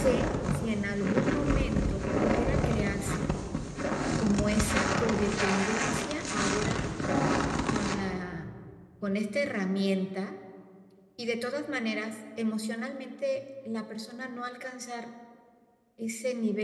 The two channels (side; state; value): both; identical; correlation 1.00